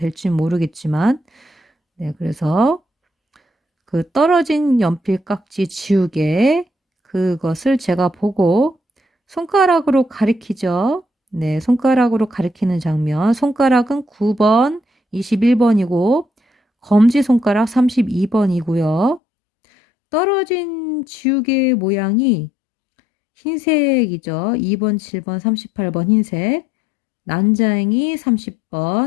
모르겠지만, 네, 그래서 그 떨어진 연필 깍지 지우개, 그것을 제가 보고 손가락으로 가리키죠. 네, 손가락으로 가리키는 장면. 손가락은 9번, 21번이고 검지손가락 32번이고요. 떨어진 지우개 모양이 흰색이죠. 2번, 7번, 38번 흰색. 난장이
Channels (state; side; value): drops out; right; at 19.2 s